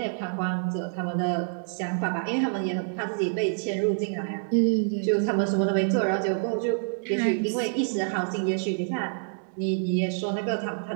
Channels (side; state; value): left; silent; digital silence